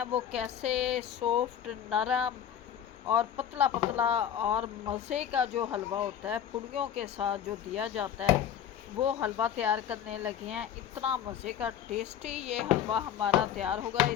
वो कैसे सॉफ्ट, नरम और पतला पतला और मज़े का जो हलवा होता है पूड़ियों के साथ जो दिया जाता है, वो हलवा तैयार करने लगे हैं। इतना मज़े का टेस्टी ये हलवा हमारा तैयार होगा।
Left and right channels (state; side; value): quieter; right; 9.6 dB